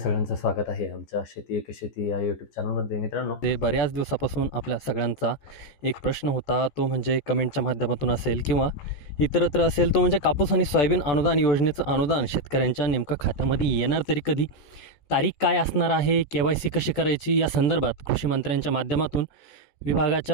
स्वागत आहे आमच्या शेती एक शेती या यूट्यूब चॅनलमध्ये. मित्रांनो, ते बऱ्याच दिवसापासून आपल्या सगळ्यांचा एक प्रश्न होता, तो म्हणजे कमेंटच्या माध्यमातून असेल किंवा इतरत्र असेल, तो म्हणजे कापूस आणि सोयाबीन अनुदान योजनेचं अनुदान शेतकऱ्यांच्या नेमकं खात्यामध्ये येणार तरी कधी, तारीख काय असणार आहे, KYC कशी करायची, या संदर्भात कृषी मंत्र्यांच्या माध्यमातून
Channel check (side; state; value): right; late; 14 ms